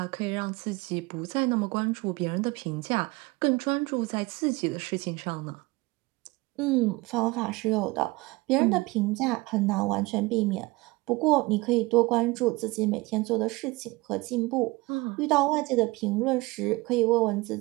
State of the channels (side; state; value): left; quieter; 22.6 dB